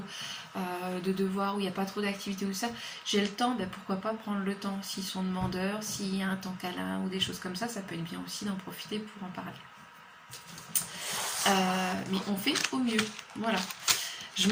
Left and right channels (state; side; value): identical; both; correlation 1.00